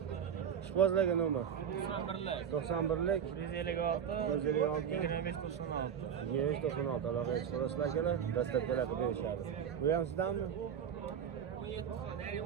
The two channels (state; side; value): quieter; left; 8.2 dB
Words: Ishqozlarga nomer 91lik 156 2596 aloqaga chiqasizlar akalar. Dastlabkilar qilib berishadi. Bu ham sizdanmi?